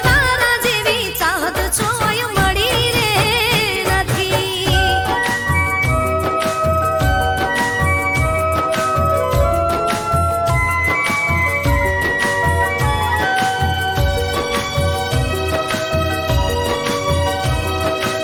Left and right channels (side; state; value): both; identical; correlation 1.00